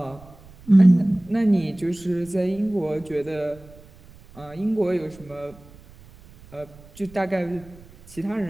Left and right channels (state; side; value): noise; right; rumble, 23 dB below the sound